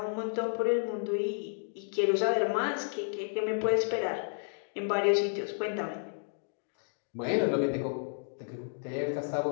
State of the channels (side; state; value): right; silent; digital silence